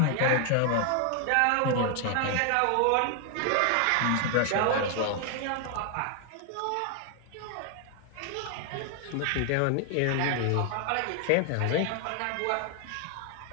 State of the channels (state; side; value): different; both; correlation 0.00